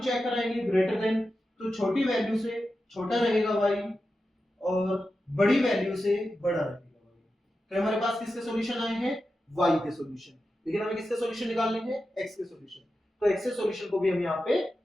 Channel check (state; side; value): normal; both; correlation 0.91